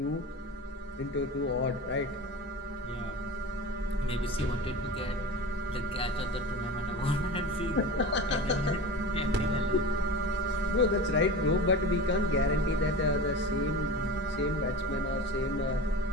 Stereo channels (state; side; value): normal; both; correlation 0.31